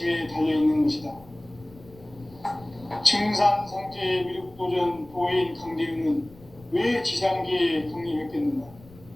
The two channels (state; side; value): noise; left; rumble, 22 dB below the sound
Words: 달려있는 것이다. 증산상제 미륵도전 도인 강대우는 왜 지상계에 강림했겠는가?